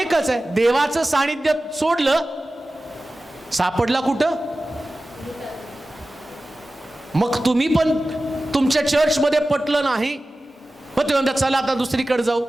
आहे, देवाचं सानिध्य सोडलं, सापडला कुठं? मग तुम्ही पण तुमच्या चर्चमध्ये पटलं नाही, मग तुम्ही म्हणता चला आता दुसरीकडे जाऊ.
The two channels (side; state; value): both; normal; correlation 0.95